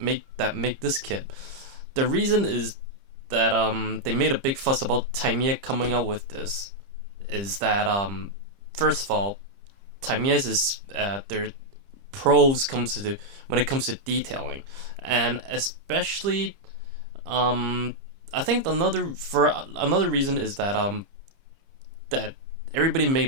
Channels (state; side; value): late; left; 30 ms